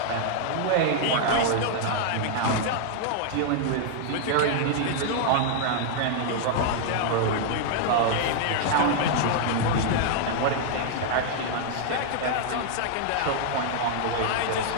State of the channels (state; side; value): different; both; correlation 0.00